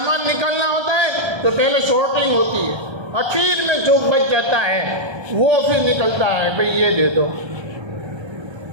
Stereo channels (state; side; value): late; left; 1.3 ms